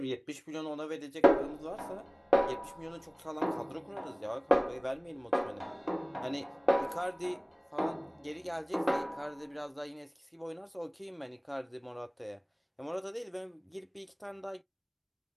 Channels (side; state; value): both; identical; correlation 1.00